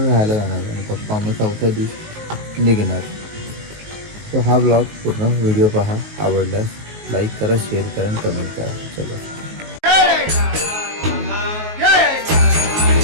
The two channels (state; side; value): late; left; 19 ms